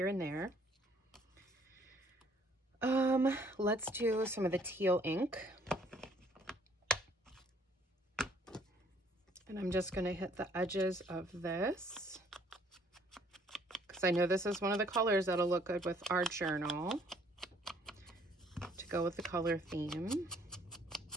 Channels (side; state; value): both; normal; correlation 0.61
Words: and there. Let's do some of the teal ink. And I'm just going to hit the edges of this, because I know this is one of the colors that'll look good with our journal to go with the color theme.